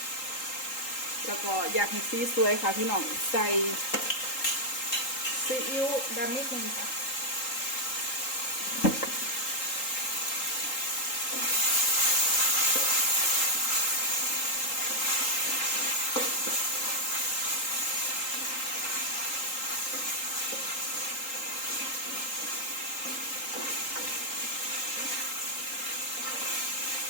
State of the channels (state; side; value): late; right; 3.8 ms